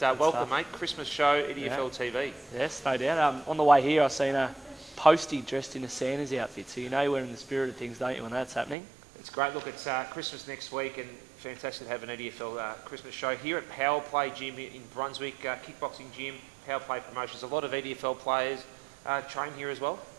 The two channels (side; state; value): left; drops out; at 8.8 s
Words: welcome, mate. Christmas show, EDFL TV. Yes, no doubt. On the way here, I've seen a postie dressed in a Santa's outfit, so you know we're in the spirit of things, don't you, when that's happening? It's great. Look, it's Christmas next week, and fantastic to have an EDFL Christmas show here at Power Play Gym in Brunswick, kickboxing gym, Power Play Promotions. A lot of EDFL players train here as well.